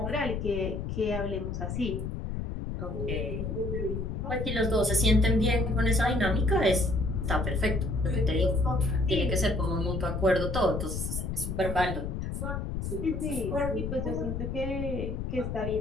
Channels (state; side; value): noise; left; rumble, 4 dB below the sound